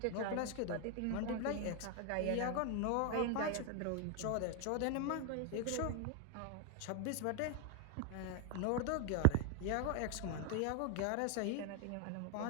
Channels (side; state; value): both; different; correlation 0.01